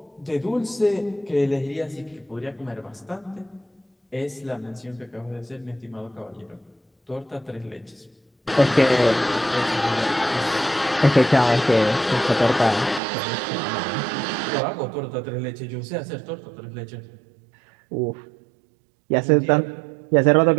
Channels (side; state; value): left; drops out; at 13.0 s